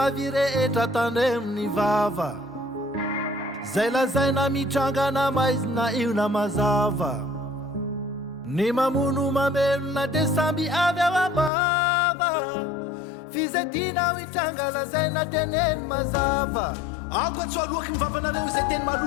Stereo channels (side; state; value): right; drops out; at 11.5 s